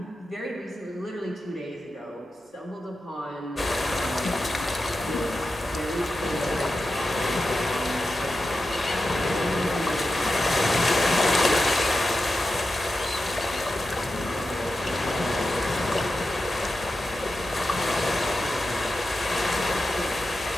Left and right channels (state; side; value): normal; both; correlation 0.90